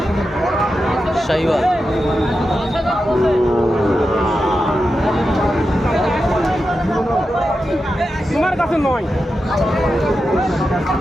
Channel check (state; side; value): normal; both; correlation 0.90